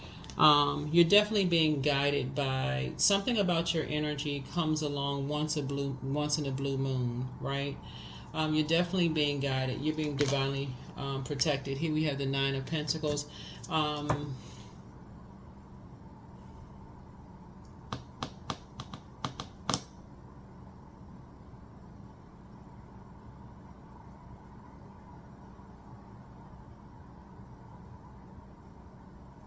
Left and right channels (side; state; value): both; identical; correlation 1.00